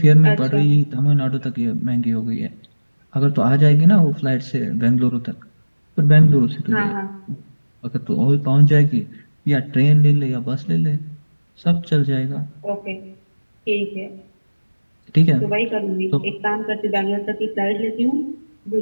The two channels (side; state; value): both; inverted; correlation -1.00